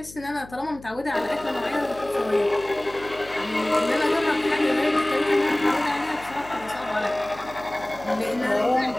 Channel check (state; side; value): noise; left; hum, 19 dB below the sound